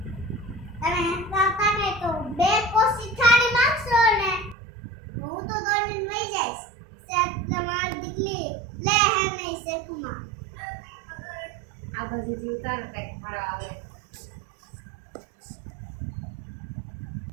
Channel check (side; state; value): left; drops out; at 4.5 s